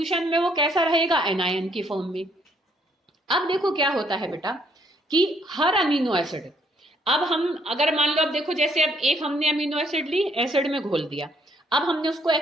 में वो कैसा रहेगा, एनायन की फॉर्म में। अब देखो क्या होता है बेटा कि हर अमीनो एसिड, अब हम अगर मान लो, अब देखो जैसे अब एक हमने अमीनो एसिड ली, एसिड में घोल दिया, अब हमने उसको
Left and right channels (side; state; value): both; normal; correlation 0.68